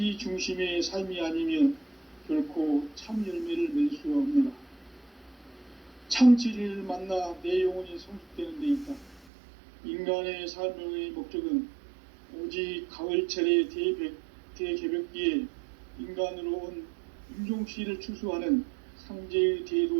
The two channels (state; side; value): drops out; left; at 9.2 s